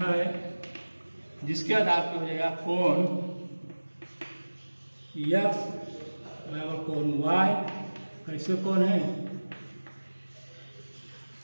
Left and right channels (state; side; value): inverted; both; correlation -1.00